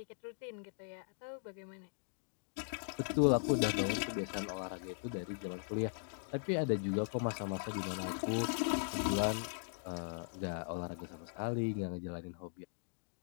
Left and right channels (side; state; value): right; silent; digital silence